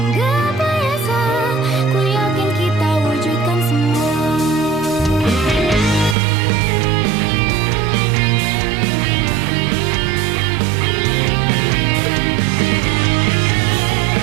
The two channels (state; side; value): drops out; left; at 6.2 s